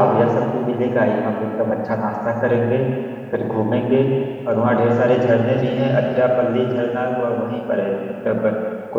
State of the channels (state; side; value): identical; both; correlation 1.00